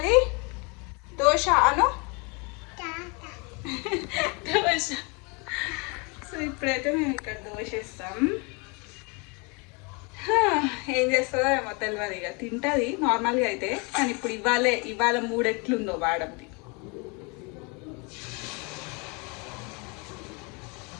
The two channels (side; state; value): right; quieter; 31.0 dB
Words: దోశ అను. దోశ. సో ఇప్పుడైతే మేము ఇక్కడ దోశ ఇస్తాం. ఏం చేస్తుందో ఏమో తెలియదు. ఇక తింటుంది నార్మల్గా అయితే, కానీ ఇప్పుడు ఇవాళ మూడు ఎట్లుందో వాడంది.